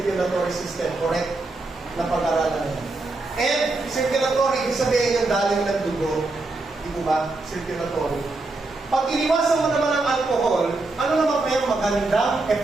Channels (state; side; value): quieter; left; 3.2 dB